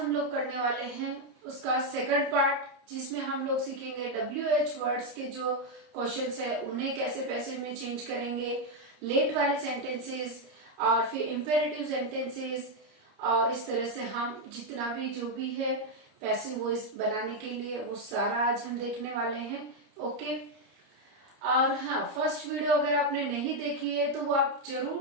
लोग करने वाले हैं उसका सेकंड पार्ट, जिसमें हम लोग सीखेंगे WH वर्ड्स के जो क्वेश्चंस है उन्हें कैसे पैसिव में चेंज करेंगे, लेट वाले सेंटेंसेस और फिर इंपेरेटिव सेंटेंसेस, और इस तरह से हम जितना भी जो भी है पैसिव वॉइस बनाने के लिए वो सारा आज हम देखने वाले हैं। ओके, और हाँ, फर्स्ट वीडियो अगर आपने नहीं देखी है तो वो आप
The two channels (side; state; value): left; late; 30 ms